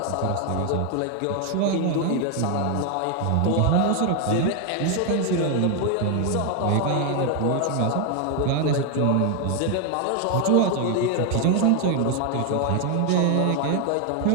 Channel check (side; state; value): both; different; correlation 0.01